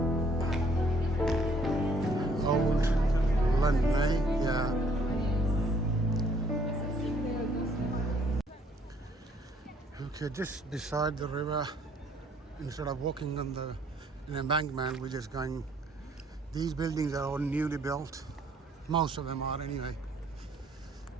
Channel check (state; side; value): normal; both; correlation 0.63